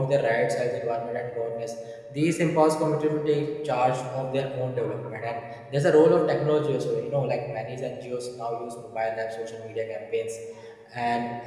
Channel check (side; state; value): both; identical; correlation 1.00